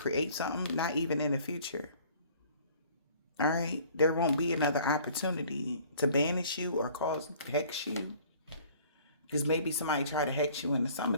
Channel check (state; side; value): inverted; both; correlation -0.53